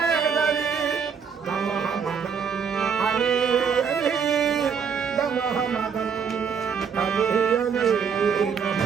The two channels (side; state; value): left; quieter; 6.6 dB